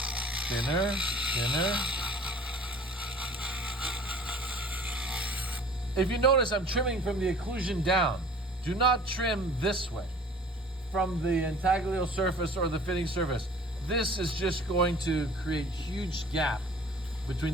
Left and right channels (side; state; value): both; normal; correlation 0.48